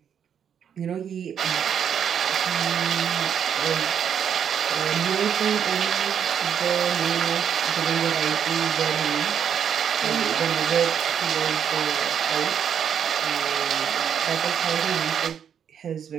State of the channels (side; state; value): left; quieter; 8.2 dB